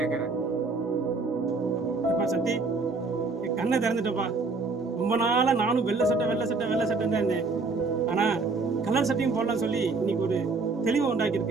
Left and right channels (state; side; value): quieter; left; 4.0 dB